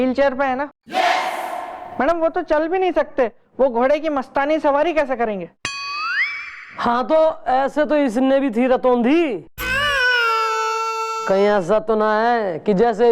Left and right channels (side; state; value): both; identical; correlation 1.00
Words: चेयर पे है ना। मैडम वो तो चल भी नहीं सकते, वो घोड़े की मस्तानी सवारी कैसे करेंगे? हाँ तो ऐसे तो इसने भी थी रतौंधी। कहीं ऐसा तो ना है कि जैसे